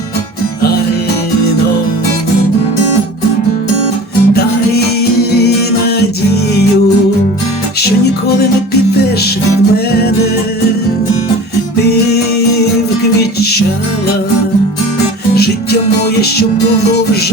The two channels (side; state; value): both; normal; correlation 0.39